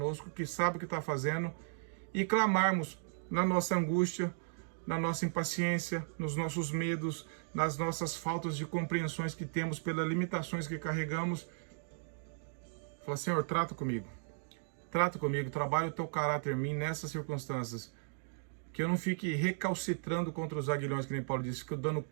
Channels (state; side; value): silent; left; digital silence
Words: que sabe o que está fazendo, e clamarmos na nossa angústia, na nossa impaciência, nos nossos medos, nas nossas faltas de compreensões que temos pelas limitações que carregamos. Fala: Senhor, trata comigo, trabalha o teu caráter em mim nessas circunstâncias, que eu não fique recalcitrando contra os aguilhões, que nem Paulo disse, que eu dando